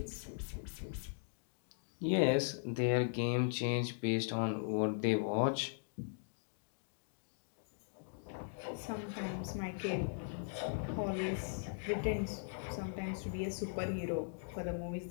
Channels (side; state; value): right; silent; digital silence